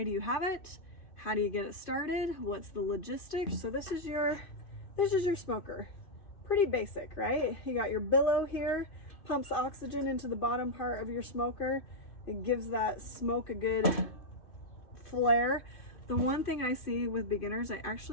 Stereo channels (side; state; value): right; late; 2.5 ms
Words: do you have it? How do you get it started? What's the logistics? So this is your smoker. Pretty basic, right? You got your billow here, pumps oxygen into the bottom part of your smoker. It gives that smoke a good flare. The one thing I see with beginners, I